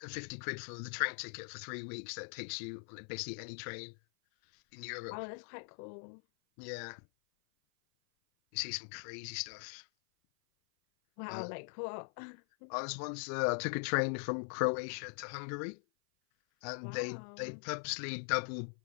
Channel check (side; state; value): right; silent; 50 dB below the other